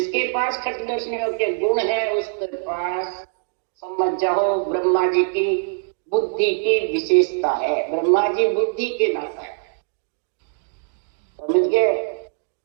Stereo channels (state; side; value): silent; left; digital silence